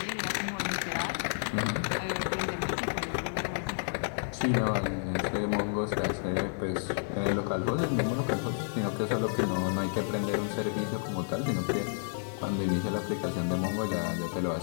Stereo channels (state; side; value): silent; right; digital silence